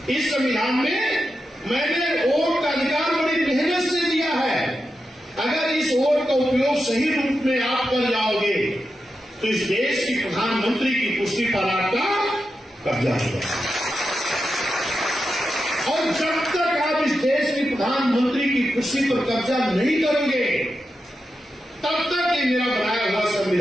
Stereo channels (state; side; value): normal; both; correlation 0.89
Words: इस संविधान में मैंने वोट का अधिकार बड़ी मेहनत से दिया है। अगर इस वोट का उपयोग सही रूप में आप कर जाओगे तो इस देश की प्रधानमंत्री की कुर्सी पर आपका कब्जा होगा। और जब तक आप इस देश की प्रधानमंत्री की कुर्सी पर कब्जा नहीं करोगे तब तक ये मेरा बनाया हुआ